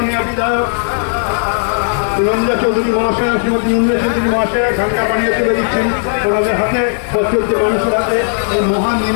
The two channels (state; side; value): silent; right; digital silence